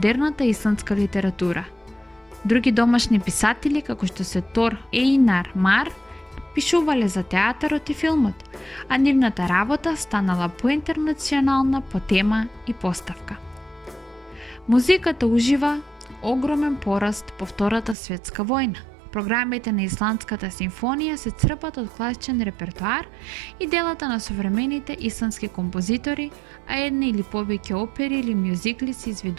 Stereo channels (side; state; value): left; drops out; at 17.9 s